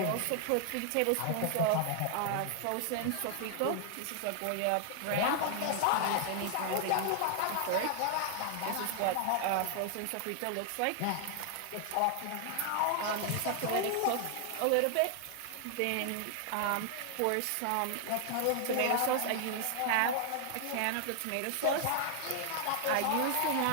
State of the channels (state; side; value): different; both; correlation 0.00